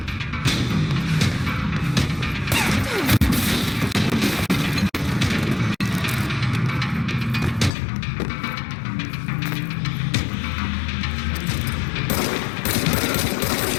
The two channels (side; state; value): right; drops out; at 7.7 s